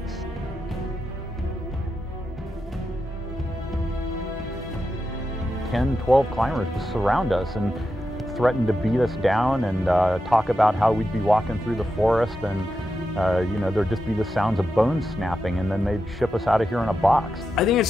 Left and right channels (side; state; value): both; normal; correlation 0.88